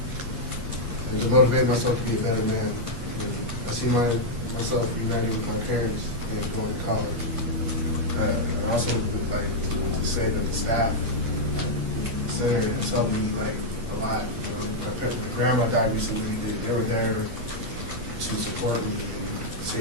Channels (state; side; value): late; left; 8.5 ms